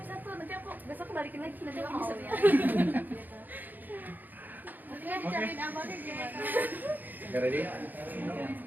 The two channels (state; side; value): late; left; 0.086 ms